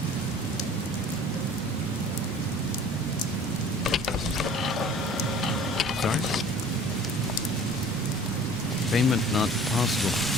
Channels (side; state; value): both; normal; correlation 0.47